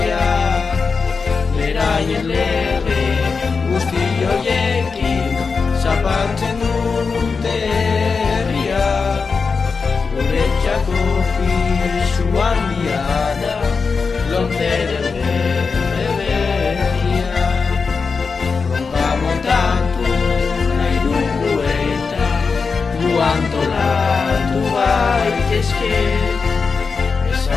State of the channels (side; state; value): right; quieter; 5.0 dB